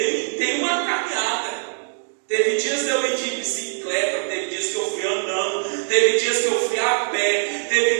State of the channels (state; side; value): silent; left; 58 dB below the other